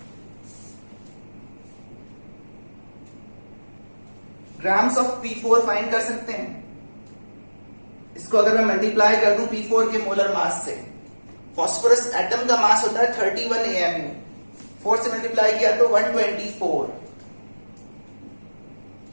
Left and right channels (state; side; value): inverted; both; correlation -1.00